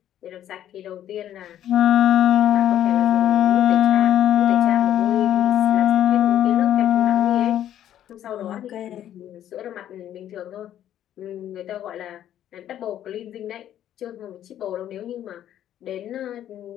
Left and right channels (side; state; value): right; quieter; 11.4 dB